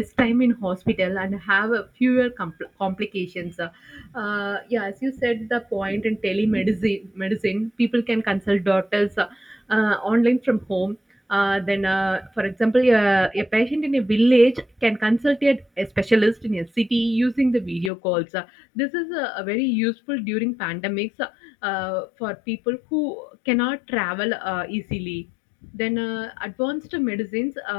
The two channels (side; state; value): right; drops out; at 17.9 s